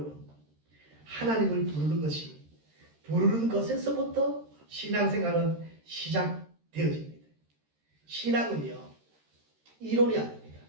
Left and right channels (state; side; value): late; left; 13 ms